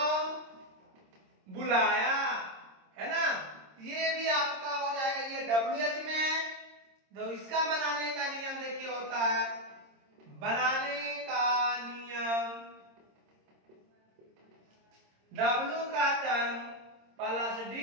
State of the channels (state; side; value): late; left; 26 ms